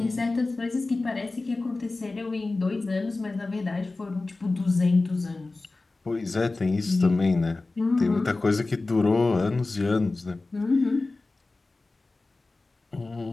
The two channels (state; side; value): quieter; right; 3.3 dB